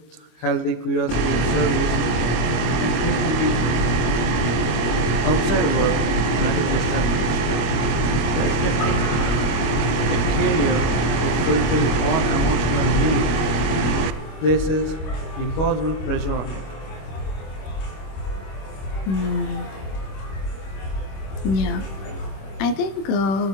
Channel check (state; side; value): late; right; 25 ms